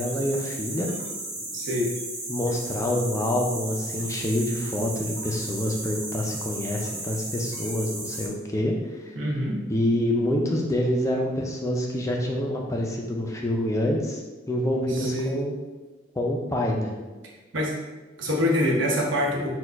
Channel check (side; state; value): both; normal; correlation 0.61